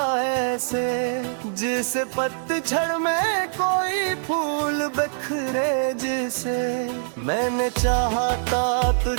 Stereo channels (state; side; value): silent; left; 60 dB below the other